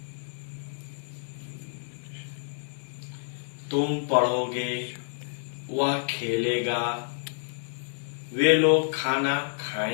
तुम पढ़ोगे, वह खेलेगा, वे लोग खाना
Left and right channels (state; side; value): silent; right; 59 dB below the other